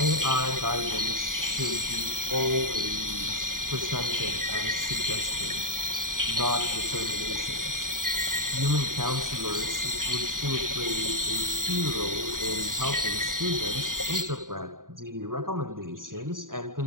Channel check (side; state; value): left; late; 0.90 ms